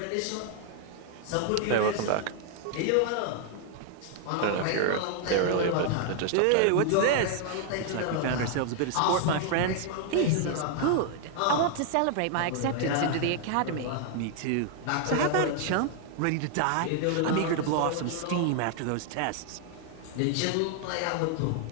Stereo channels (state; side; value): different; both; correlation 0.00